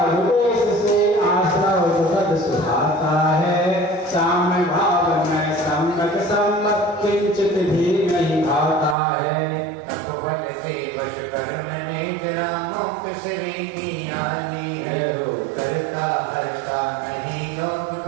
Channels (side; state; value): left; drops out; at 9.0 s